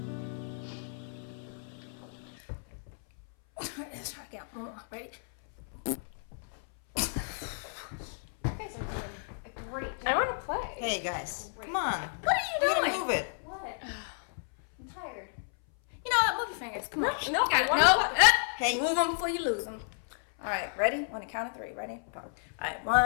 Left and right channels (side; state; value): right; silent; 57 dB below the other